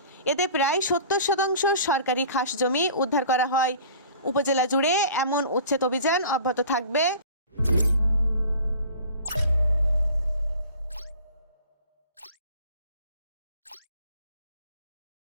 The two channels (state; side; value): inverted; both; correlation -0.45